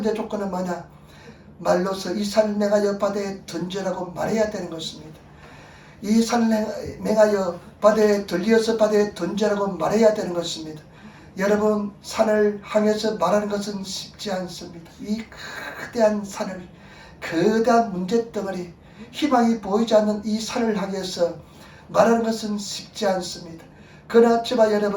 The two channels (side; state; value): both; identical; correlation 1.00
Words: 조건은 뭐냐? 말로서 이 산을 맹하여 바다에 던지라고 말해야 되는 것입니다. 이 산을 맹하여 바다에 들려서 바다에 던지라고 말해야 되는 것입니다. 여러분, 산을 향해서 말하는 것은 쉽지 않습니다. 이 거대한 산을, 거대한 문제덩어리, 희망이 보이지 않는 이 산을 향해서 말하는 것은 쉽지 않습니다. 그러나 저와